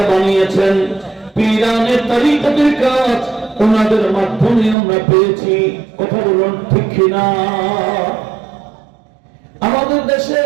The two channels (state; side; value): drops out; left; at 4.8 s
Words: বানিয়েছেন। পীরানে তরিকতের কাজ ওনাদের মাধ্যমে আমরা পেয়েছি। কথা বলুন ঠিক কিনা? আমাদের দেশে